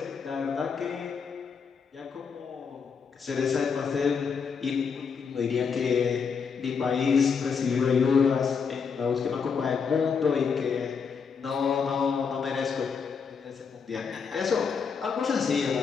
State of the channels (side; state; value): right; quieter; 6.0 dB